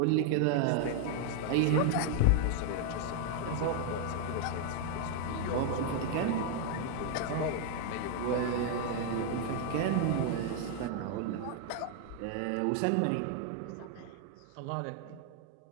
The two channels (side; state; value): both; different; correlation 0.00